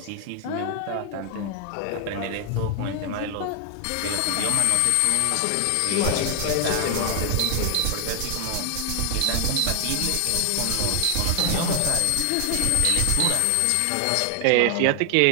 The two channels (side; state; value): both; different; correlation 0.00